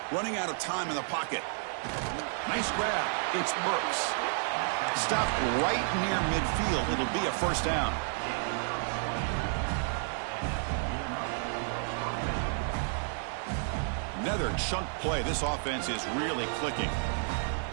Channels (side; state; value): left; silent; 57 dB below the other